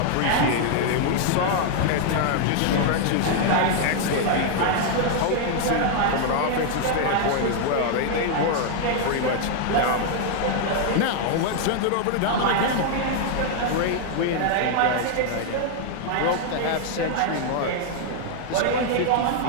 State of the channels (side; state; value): both; different; correlation 0.00